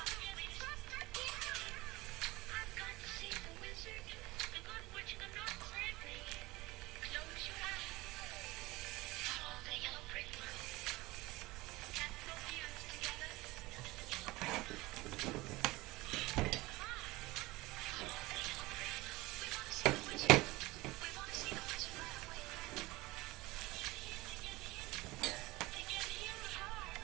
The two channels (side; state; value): left; quieter; 20.8 dB